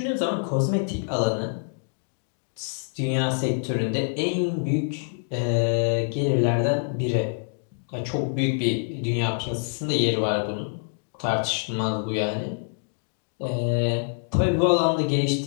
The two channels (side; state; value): right; silent; digital silence